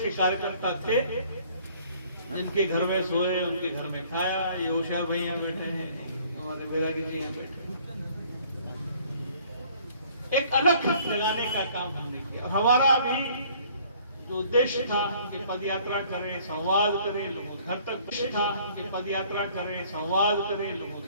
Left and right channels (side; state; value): both; inverted; correlation -0.57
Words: कार्यकर्ता थे जिनके घर में सोए, उनके घर में खाया। ये उषा भाई यहाँ बैठे हैं, हमारे बैरागी जी यहाँ बैठे हैं। एक अलग लगाने का काम हमने किया। हमारा भी जो उद्देश्य था कि पद यात्रा करें, संवाद करें, लोगों घर तक था कि पद यात्रा करें, संवाद करें, लोगों